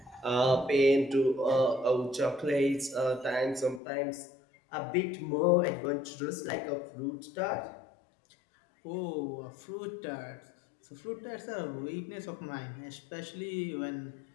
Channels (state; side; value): drops out; right; at 3.8 s